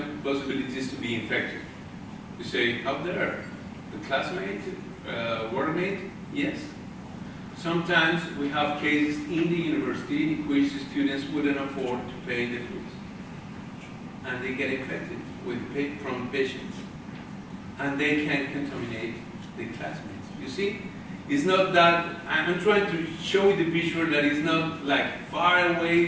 possibilities to be infected. You say, up there, the classmate, workmate, yes. Sometimes we have cases in the university in which the students wouldn't afford to pay the fees, and they get infected from patients, and they can contaminate the classmates. You see, it's not that, I'm trying to show you the picture that it's not like far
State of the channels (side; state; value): both; identical; correlation 1.00